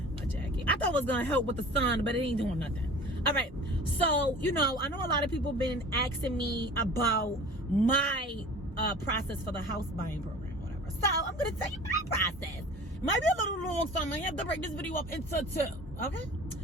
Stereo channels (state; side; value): normal; both; correlation 0.42